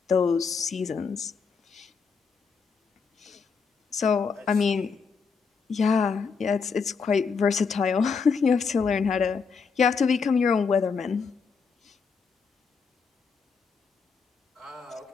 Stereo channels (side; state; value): right; quieter; 5.5 dB